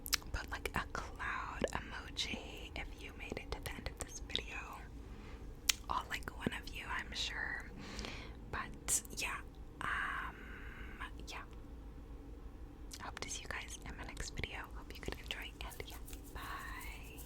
Put like a cloud emoji if you made it to the end of this video. All like one of you, I'm sure.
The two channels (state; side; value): identical; both; correlation 1.00